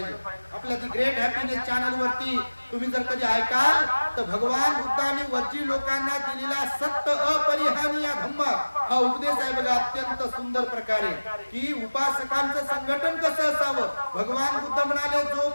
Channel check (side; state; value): both; inverted; correlation -1.00